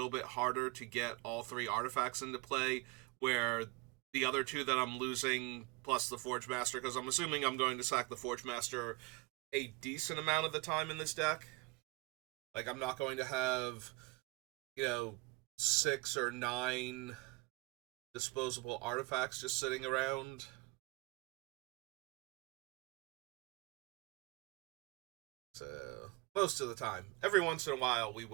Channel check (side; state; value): left; quieter; 25.4 dB